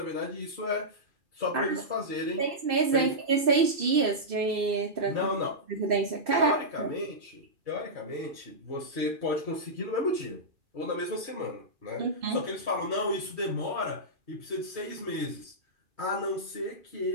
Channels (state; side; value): late; left; 2.7 ms